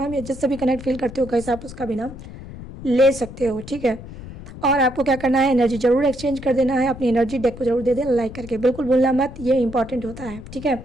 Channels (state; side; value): noise; left; rumble, 13 dB below the sound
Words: या जिससे भी कनेक्ट फील करते हो कैसे आप उसका भी नाम ले सकते हो। ठीक है, और आपको क्या करना है, एनर्जी जरूर एक्सचेंज कर देना है, अपनी एनर्जी डेक को जरूर दे देना लाइक करके, बिल्कुल भूलना मत, ये इंपॉर्टेंट होता है। ठीक है,